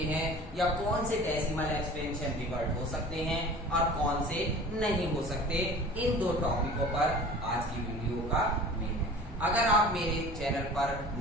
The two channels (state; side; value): normal; both; correlation 0.42